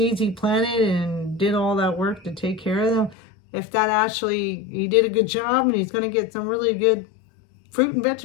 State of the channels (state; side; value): drops out; right; at 3.2 s